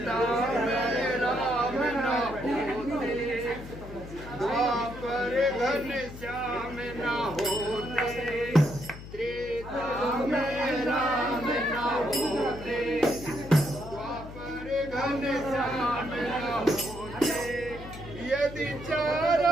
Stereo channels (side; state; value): left; noise; hum, 13 dB below the sound